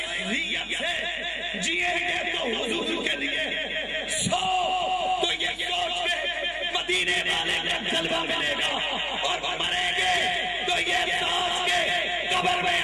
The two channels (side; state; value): both; identical; correlation 1.00